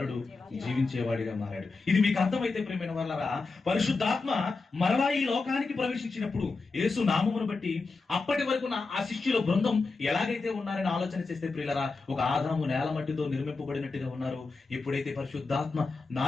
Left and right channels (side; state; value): right; quieter; 4.0 dB